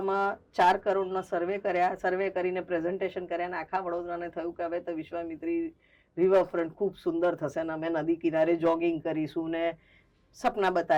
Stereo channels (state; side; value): identical; both; correlation 1.00